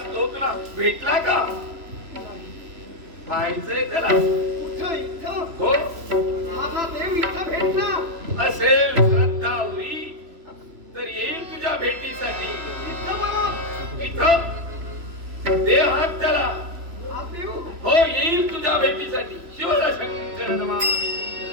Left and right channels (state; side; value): late; left; 3.4 ms